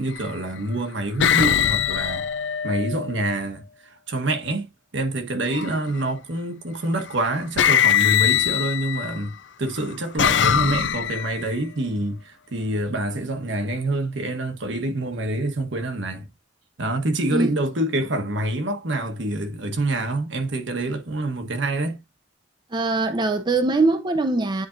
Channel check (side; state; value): both; normal; correlation 0.36